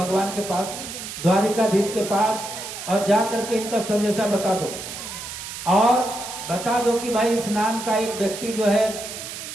के पास, द्वारिकाधीश के पास, और जा करके इनका संदेशा बता दो और बता दो कि भाई इस नाम का एक व्यक्ति जो है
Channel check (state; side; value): noise; right; hiss, 9 dB below the sound